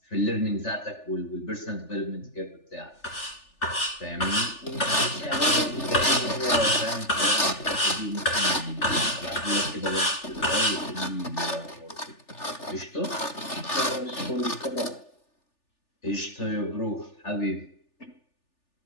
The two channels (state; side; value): late; right; 3.4 ms